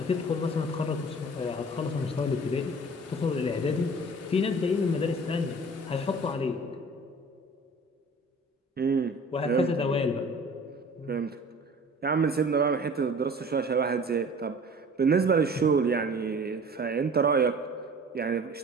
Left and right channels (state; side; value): normal; both; correlation 0.45